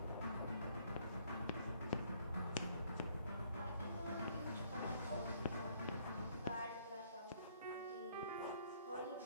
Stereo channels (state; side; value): inverted; both; correlation -0.66